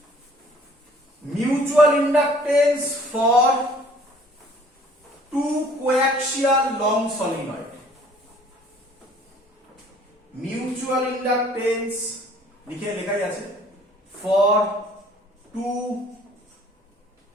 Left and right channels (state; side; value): normal; both; correlation 0.55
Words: mutual inductance for two coaxial long solenoid. Mutual inductance লেখাই আছে for two